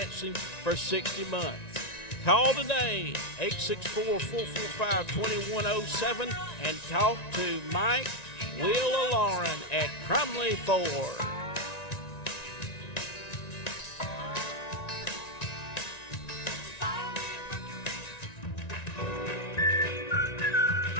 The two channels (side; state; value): right; late; 1.9 ms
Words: for 60 months. Call today, 864-445-2107, and talk to Mike, Will, or Lauren at Crumley Ford.